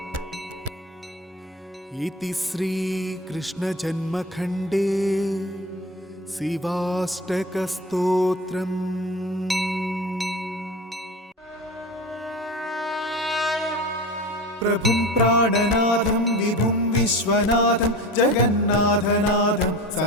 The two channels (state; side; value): normal; both; correlation 0.31